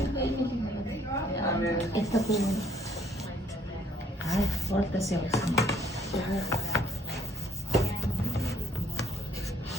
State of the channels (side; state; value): both; normal; correlation 0.64